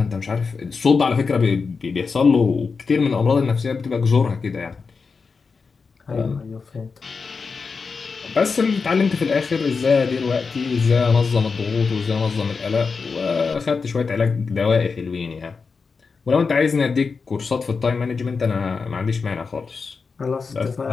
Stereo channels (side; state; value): right; quieter; 4.9 dB